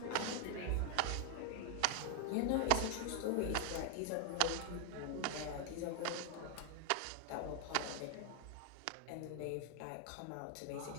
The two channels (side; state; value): both; different; correlation 0.00